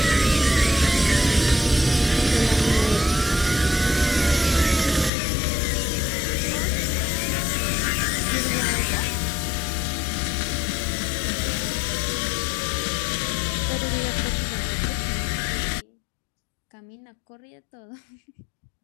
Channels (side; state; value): right; drops out; at 5.1 s